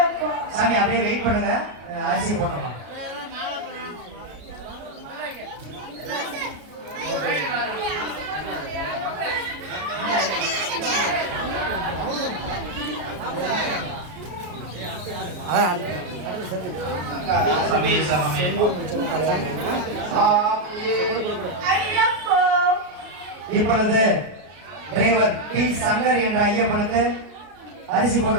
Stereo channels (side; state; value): left; late; 33 ms